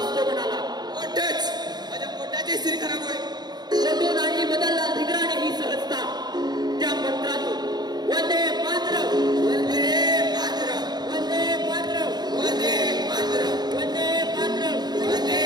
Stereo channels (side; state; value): left; late; 0.20 ms